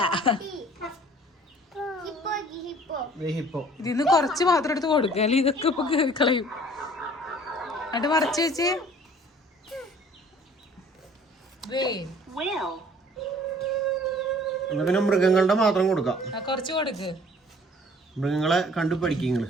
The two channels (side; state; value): both; normal; correlation 0.53